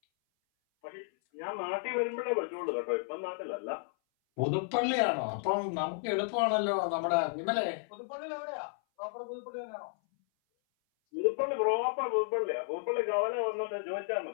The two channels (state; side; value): silent; right; 56 dB below the other